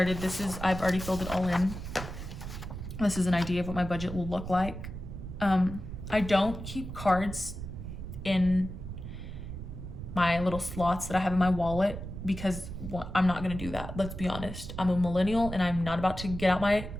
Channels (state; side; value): noise; right; rumble, 9 dB below the sound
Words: I've already filled it all in. This is an idea of what my budget will look like. I don't keep cards in my little slots that I have in my wallet because I'm not gonna do that. Let's be honest. I'm a millennial and I'm not about to get out my